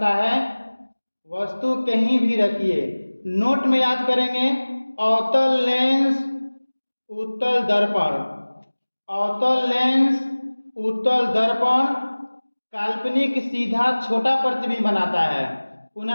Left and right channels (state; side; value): inverted; both; correlation -1.00